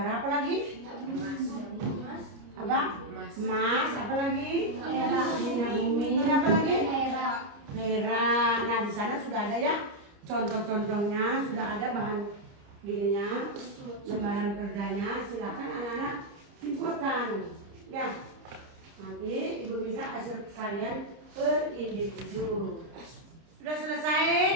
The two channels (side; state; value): left; late; 30 ms